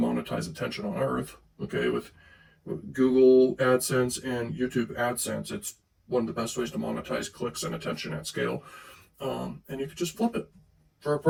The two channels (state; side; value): identical; both; correlation 1.00